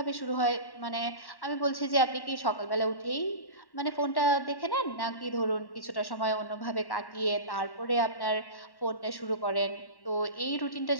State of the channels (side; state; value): right; late; 1.1 ms